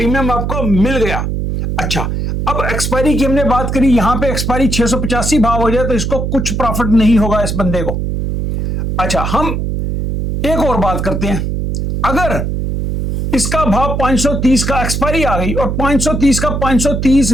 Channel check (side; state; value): right; noise; hum, 2 dB below the sound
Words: आपको मिल गया। अच्छा, अब एक्सपायरी की हमने बात करी, यहां पे एक्सपायरी 685 भाव हो जाए तो इसको कुछ प्रॉफिट नहीं होगा इस बंदे को। अच्छा, हम एक और बात करते हैं, अगर इसका भाव 530 का एक्सपायरी आ गई और 530 का 530